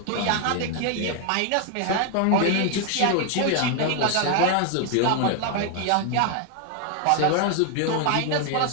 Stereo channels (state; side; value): different; both; correlation 0.00